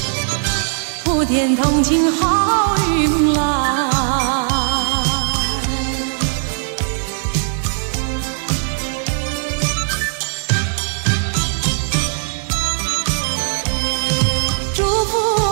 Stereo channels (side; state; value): left; silent; 60 dB below the other